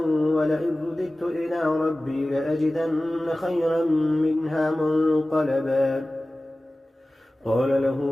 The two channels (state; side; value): normal; both; correlation 0.97